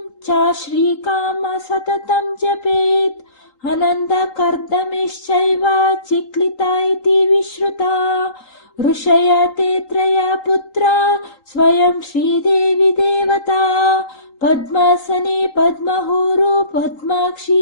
च श्रीकाम सततं जपेत् आनन्दकर्दमेश्चैव चिक्लिता इति विश्रुता ऋषया ते त्रया पुत्रा स्वयं श्रीदेवी देवता पद्मासने पद्महुरु पद्माक्षी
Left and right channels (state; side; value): late; right; 3.8 ms